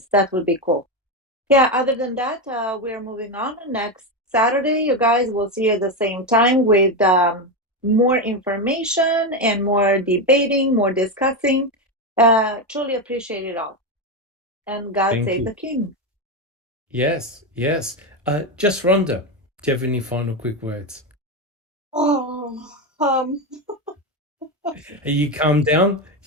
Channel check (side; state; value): both; normal; correlation 0.11